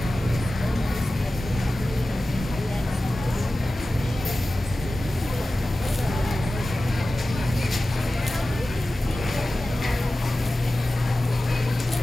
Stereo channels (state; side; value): normal; both; correlation 0.95